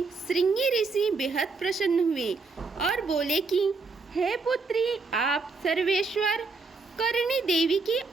श्रृंगी ऋषि बेहद प्रसन्न हुए और बोले कि हे पुत्री, आप सर्वेश्वर करणी देवी की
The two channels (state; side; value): quieter; left; 4.1 dB